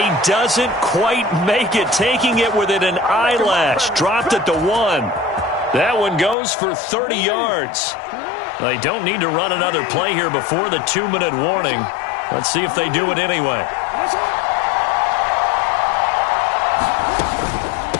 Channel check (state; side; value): drops out; right; at 6.4 s